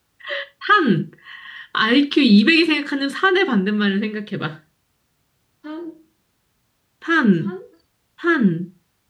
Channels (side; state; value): both; identical; correlation 1.00